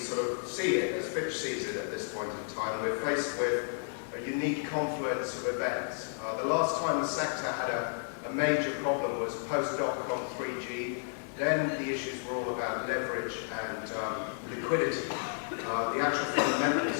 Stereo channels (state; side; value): silent; right; 56 dB below the other